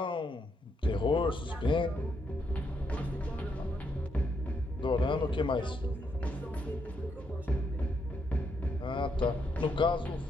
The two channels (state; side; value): normal; both; correlation 0.78